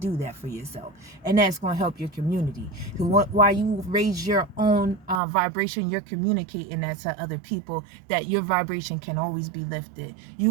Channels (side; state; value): left; drops out; at 5.2 s